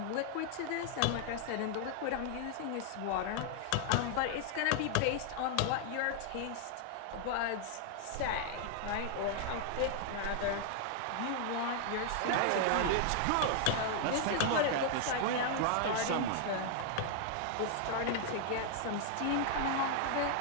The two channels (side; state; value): both; different; correlation 0.00